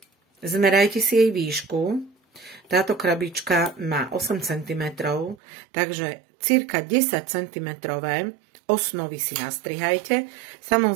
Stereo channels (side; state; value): left; drops out; at 5.4 s